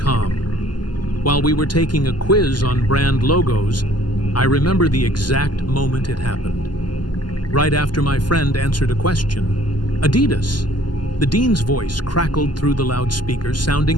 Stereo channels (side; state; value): right; late; 0.71 ms